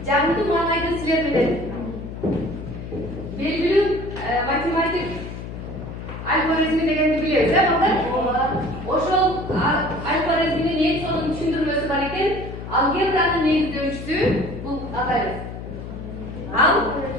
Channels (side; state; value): left; noise; hum, 9 dB below the sound